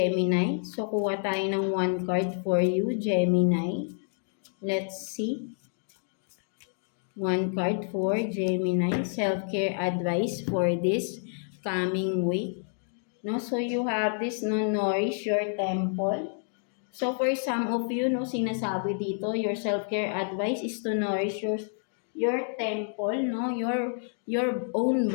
So, kuha tayo ng 1 card for you, Gemini. Let's see. 1 card for Gemini, self-care advice for this coming week. No, so you have this, no, nourish your temple. So for some of you, no, sinasabi dito, your self-care advice is to nourish your temple, no, your own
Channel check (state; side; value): silent; right; 59 dB below the other